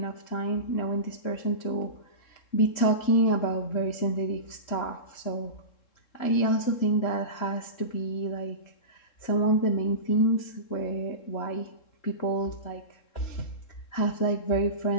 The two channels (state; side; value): late; right; 3.7 ms